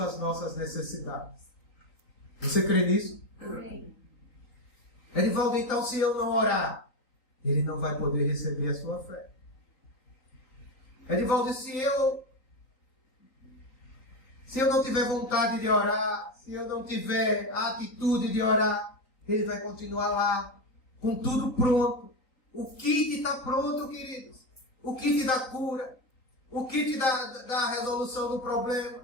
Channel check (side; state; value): right; late; 3.9 ms